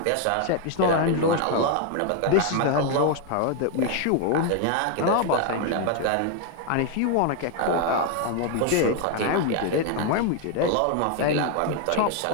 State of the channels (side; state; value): both; different; correlation 0.00